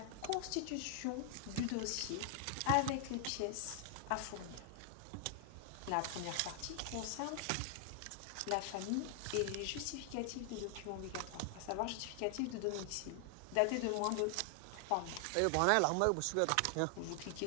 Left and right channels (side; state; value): both; different; correlation 0.00